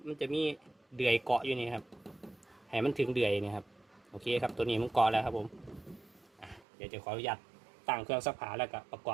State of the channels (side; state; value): left; drops out; at 6.7 s